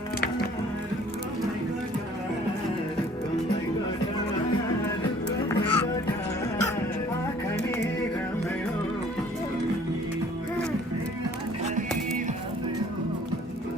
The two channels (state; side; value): normal; both; correlation 0.55